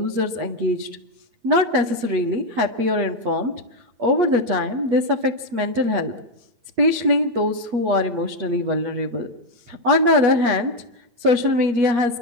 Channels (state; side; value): late; left; 8.4 ms